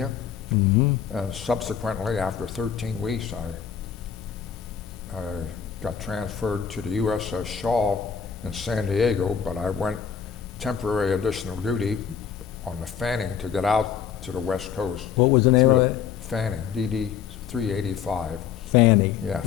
Mm-hmm. And subsequently, after 13 weeks, I got transferred to the USS Shaw in San Diego, but I went temporary additional duty on the Fanning to get out to the West Coast. What was the name of that? Fanning, DD 385. Fanny. Yeah,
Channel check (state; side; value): quieter; right; 7.9 dB